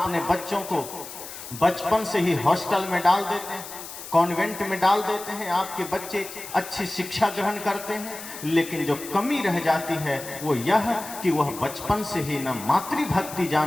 बच्चों को बचपन से ही हॉस्टल में डाल देते हैं, कॉन्वेंट में डाल देते हैं, आपके बच्चे अच्छी शिक्षा ग्रहण करते हैं, लेकिन जो कमी रह जाती है वो यह कि वह बचपन से ही न मातृभक्ति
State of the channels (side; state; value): left; noise; hiss, 12 dB below the sound